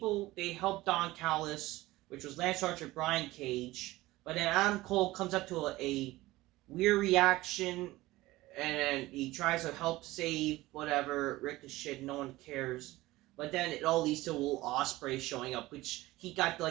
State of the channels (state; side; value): quieter; left; 18.4 dB